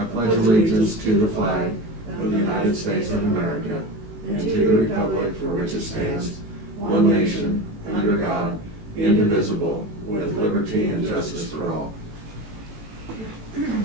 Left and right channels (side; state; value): left; late; 18 ms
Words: pledge allegiance to the flag of the United States of America and to the republic for which it stands, one nation, under God, indivisible, with liberty and justice for all.